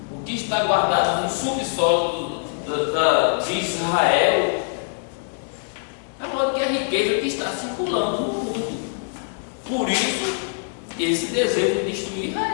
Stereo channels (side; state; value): right; silent; digital silence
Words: O que está guardado no subsolo de Israel é maior que a riqueza que está circulando no mundo. Por isso, esse desejo de destruir